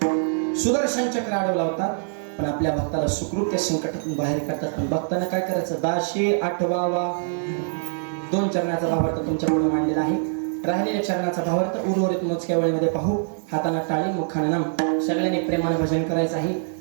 सुदर्शन चक्र अडवला होता. पण आपल्या भक्ताला सुखरूप त्या संकटातून बाहेर काढतात. पण भक्तांना काय करायचं? 1088वा 2 चरणाचा भावार्थ तुमच्या पुढे मांडलेला आहे. राहिलेल्या चरणाचा भावार्थ उर्वरित मोजक्या वेळेमध्ये पाहू. हाताना टाळी, मुखाने नाम. सगळ्यांनी प्रेमाने भजन करायचं आहे.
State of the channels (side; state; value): left; silent; digital silence